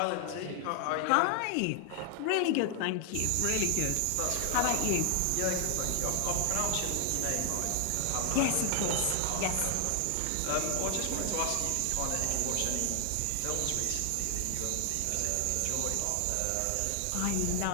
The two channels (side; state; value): both; different; correlation 0.00